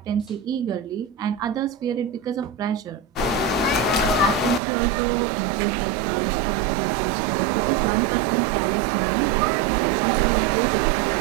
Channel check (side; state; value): left; drops out; at 4.6 s